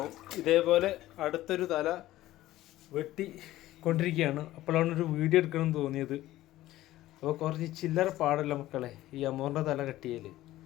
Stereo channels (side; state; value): right; quieter; 15.5 dB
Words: ഇതേപോലെ അടുത്തൊരു തല വെട്ടി കൊണ്ടിരിക്കുകയാണ്. അപ്പോഴാണ് ഒരു വീഡിയോ എടുക്കണമെന്ന് തോന്നിയത്. അപ്പോൾ കുറച്ച് ചില്ലറ പാടല്ല മക്കളെ ഈ അമൂറിൻ്റെ തല കെട്ടിയാൽ.